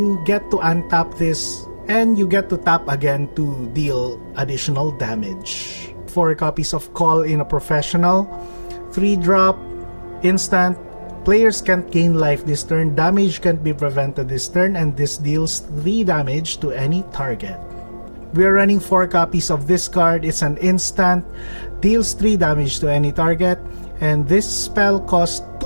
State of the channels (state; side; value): inverted; both; correlation -1.00